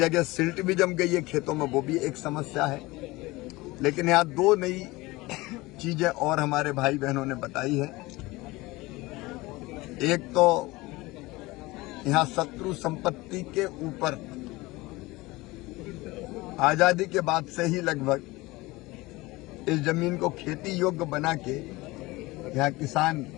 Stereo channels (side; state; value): right; quieter; 21.1 dB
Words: सिल्ट भी जम गई है खेतों में, वो भी एक समस्या है। लेकिन यहाँ 2 नई चीजें और हमारे भाई बहनों ने बताई है। एक तो यहाँ शत्रु संपत्ति के ऊपर आजादी के बाद से ही लगभग इस जमीन को खेती योग्य बना के यहाँ किसान